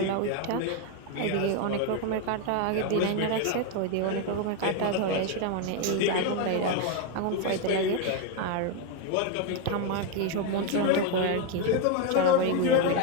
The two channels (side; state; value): both; different; correlation 0.01